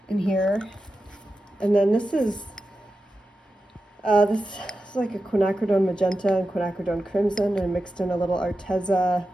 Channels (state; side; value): normal; both; correlation 0.91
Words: in here. And then this is like a quinacridone magenta and quinacridone crimson, and mixed in a little Arteza